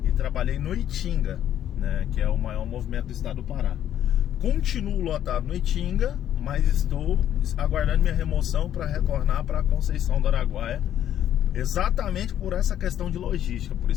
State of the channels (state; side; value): quieter; right; 10.9 dB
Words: e trabalhei no Itinga, né, que é o maior movimento do estado do Pará. Continuo lotado no Itinga, mas estou aguardando minha remoção para retornar para Conceição do Araguaia, exatamente por essa questão de logística. Por